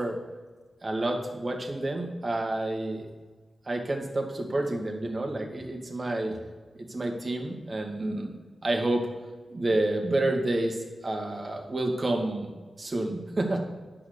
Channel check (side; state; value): both; normal; correlation 0.95